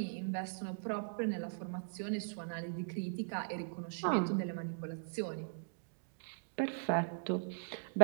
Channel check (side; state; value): left; silent; digital silence